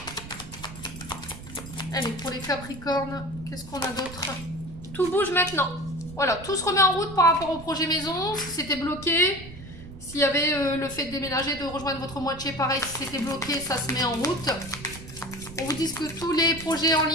Allez, pour les Capricornes, qu'est-ce qu'on a d'autre? Tout bouge maintenant. Voilà, tout se remet en route par rapport au projet maison. Si c'était bloqué, s'il y avait le fait de déménager, de rejoindre votre moitié, pareil, si c'était bloqué, ça se met en route. On vous dit que tous les projets en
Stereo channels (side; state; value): right; noise; rumble, 14 dB below the sound